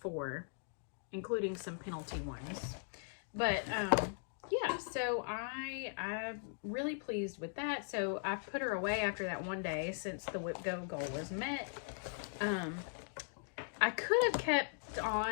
including some penalty ones. But yeah, so I'm really pleased with that. So I put her away after that one day since the whip go goal was met. I could have kept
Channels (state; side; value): silent; right; digital silence